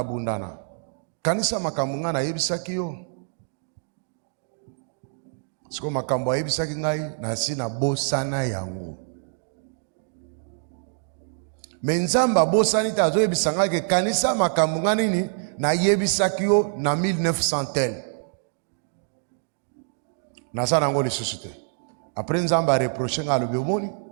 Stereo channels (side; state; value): left; silent; digital silence